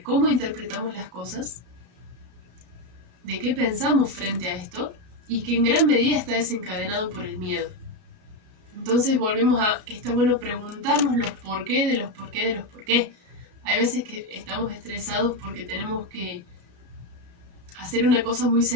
cómo interpretamos las cosas, de qué pensamos frente a esto y que en gran medida está desencadenado por el miedo. Entonces volvemos a que está bueno preguntarnos los por qué de los por qué de los por qué. Hay veces que estamos estresados porque tenemos que hacer una cosa muy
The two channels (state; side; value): late; left; 33 ms